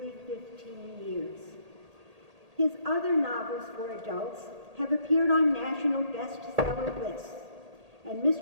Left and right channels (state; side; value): late; left; 1.8 ms